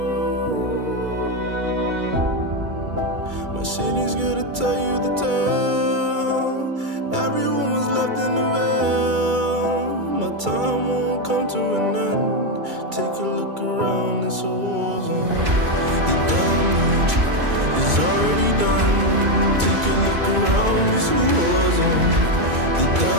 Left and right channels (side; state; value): left; late; 2.3 ms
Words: city's good to tell you the tale. Everyone was left in the veil. My time won't come to an end. Take a look around, it's a war zone. The damage is already done. Take a look around, it's a war zone. The